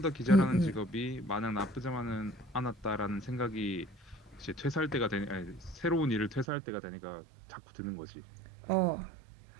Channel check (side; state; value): left; drops out; at 6.5 s